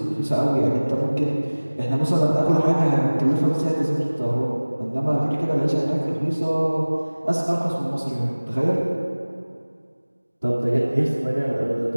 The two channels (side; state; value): both; inverted; correlation -1.00